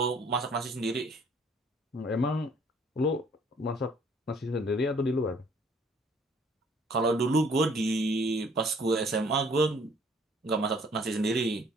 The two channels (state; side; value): normal; both; correlation 0.59